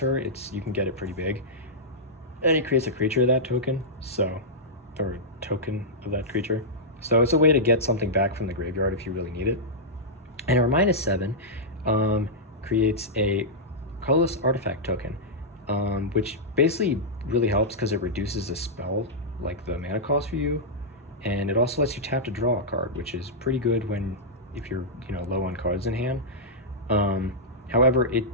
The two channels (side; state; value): both; normal; correlation -0.11